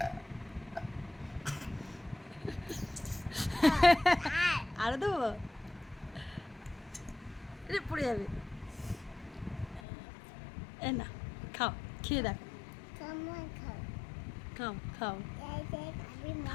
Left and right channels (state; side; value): drops out; right; at 9.8 s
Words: আরো দেবো? পড়ে যাবে। এ না, খাও, খেয়ে দেখো, খাও খাও